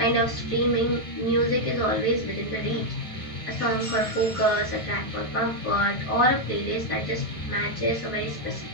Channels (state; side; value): late; right; 1.5 ms